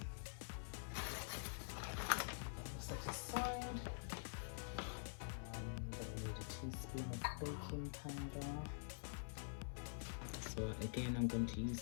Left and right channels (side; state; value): right; silent; digital silence